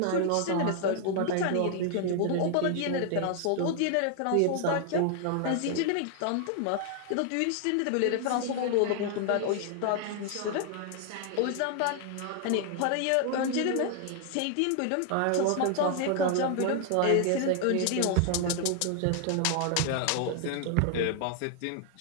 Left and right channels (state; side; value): different; both; correlation 0.00